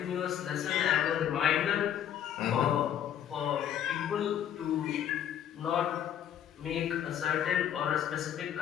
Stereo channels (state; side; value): quieter; right; 10.0 dB